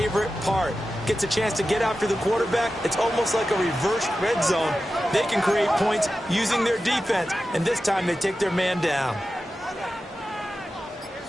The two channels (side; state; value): both; normal; correlation 0.93